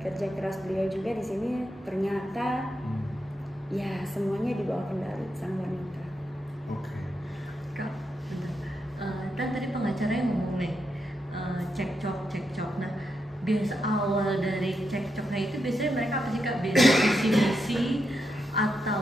keras beliau juga di sini ternyata ya semuanya di bawah kendali sang wanita. Oke. Kak, benar. Dan tadi pengacara yang ngomong nih cekcok. Nah, biasa awal dari cekcoknya itu biasanya mereka apa sih Kak? Biasa visi misi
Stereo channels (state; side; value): normal; both; correlation 0.84